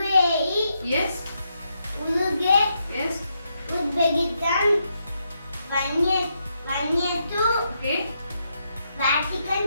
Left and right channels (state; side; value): inverted; both; correlation -0.81